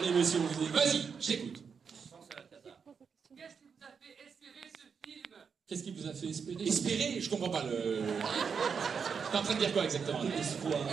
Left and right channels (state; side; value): quieter; left; 6.2 dB